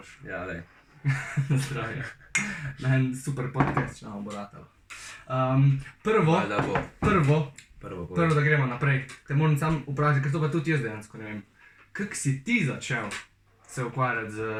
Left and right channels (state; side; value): identical; both; correlation 1.00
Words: Ja, lej. Na zdravje. Na en super podcast, če nam bo ratalo. Prvo, Da bo. prvo, da gremo naprej. Te moram sam vprašati, ker to pa tudi jaz dejansko ne vem. Kako si ti začel se ukvarjati z